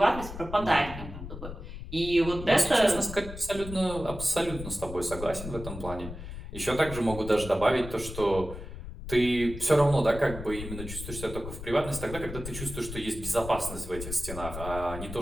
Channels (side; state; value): left; noise; rumble, 10 dB below the sound